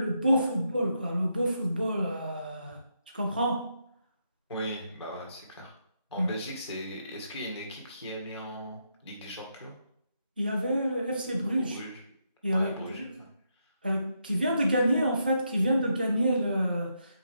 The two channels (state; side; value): inverted; both; correlation -0.80